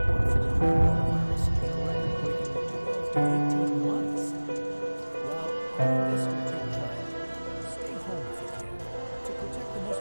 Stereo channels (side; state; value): both; inverted; correlation -1.00